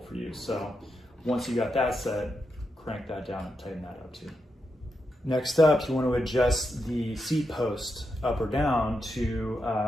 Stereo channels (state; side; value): normal; both; correlation 0.85